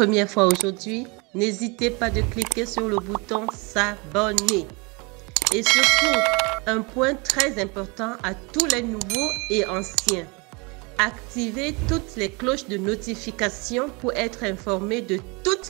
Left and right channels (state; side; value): quieter; left; 28.8 dB